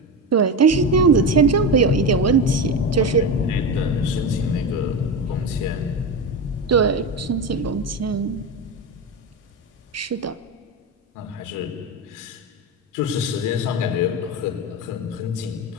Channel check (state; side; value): normal; both; correlation 0.19